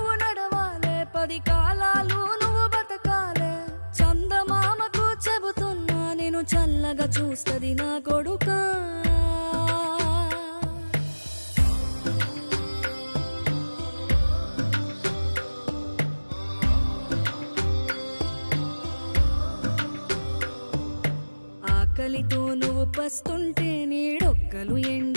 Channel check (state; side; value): inverted; both; correlation -1.00